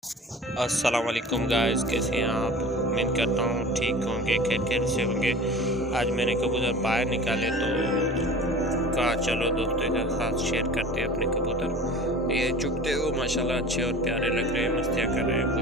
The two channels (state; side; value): normal; both; correlation 0.40